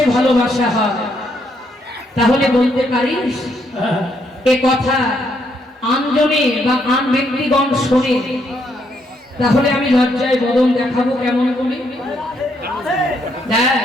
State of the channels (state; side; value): normal; both; correlation 0.74